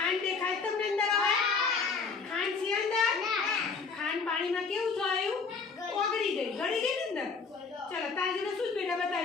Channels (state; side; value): quieter; right; 4.9 dB